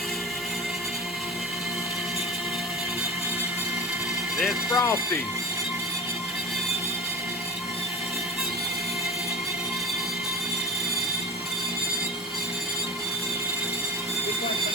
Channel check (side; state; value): both; normal; correlation 0.28